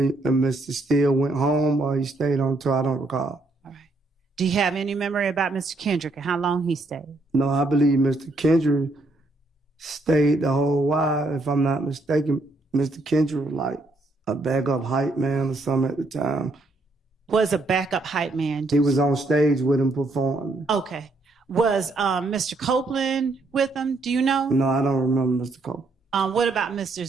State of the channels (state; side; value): quieter; left; 3.0 dB